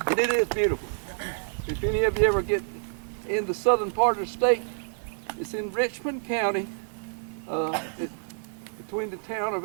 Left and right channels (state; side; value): silent; left; 57 dB below the other